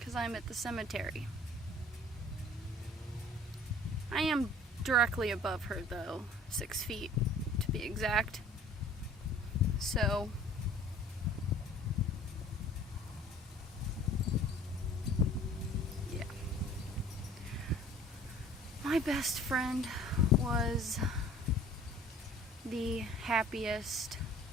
I'm at the cemetery. I am directly above her, though, 6 feet to be exact. So, yeah. My best friend was the happiest,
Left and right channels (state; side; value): normal; both; correlation 0.50